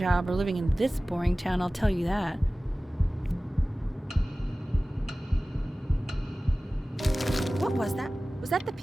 or living in this boring town, I'll tell you that. What was that? Was that the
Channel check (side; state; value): both; normal; correlation 0.97